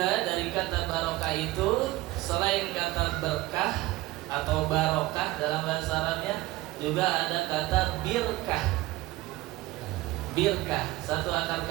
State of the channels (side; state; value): left; quieter; 18.0 dB